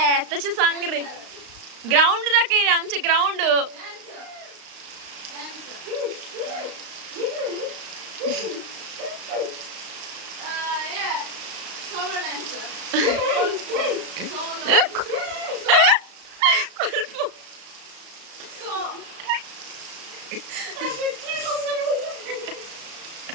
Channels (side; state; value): left; late; 35 ms